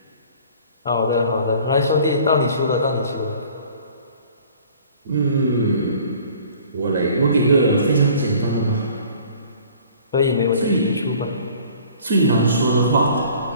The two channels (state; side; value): inverted; both; correlation -0.51